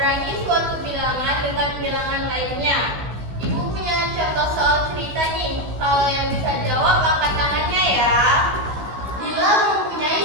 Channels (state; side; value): late; left; 16 ms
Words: suatu bilangan dengan bilangan lainnya. Ibu punya contoh soal cerita nih. Kalau yang bisa jawab angkat tangannya ya. Dila mempunyai